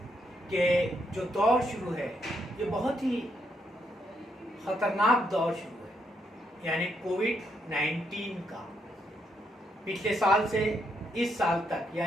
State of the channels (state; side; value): normal; both; correlation 0.77